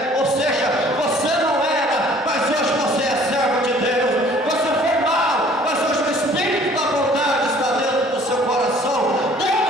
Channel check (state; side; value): normal; both; correlation 0.54